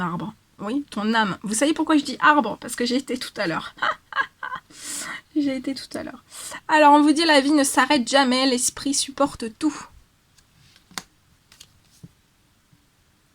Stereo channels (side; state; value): both; identical; correlation 1.00